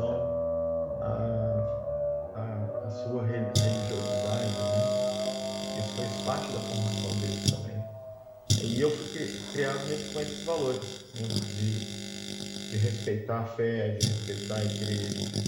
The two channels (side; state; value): both; identical; correlation 1.00